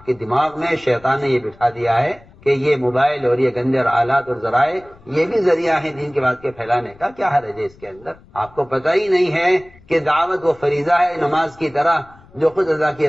کے دماغ میں شیطان نے یہ بٹھا دیا ہے کہ یہ موبائل اور یہ گندے آلات اور ذرائع یہ بھی ذریعہ ہیں دین کی بات کے پھیلانے کا. کیا حرج ہے اس کے اندر؟ آپ کو پتہ ہی نہیں ہے کہ دعوت وہ فریضہ ہے نماز کی طرح جو خود ادا کیے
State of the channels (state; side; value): noise; left; rumble, 26 dB below the sound